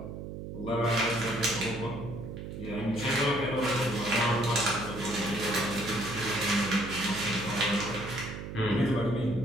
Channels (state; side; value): noise; right; hum, 8 dB below the sound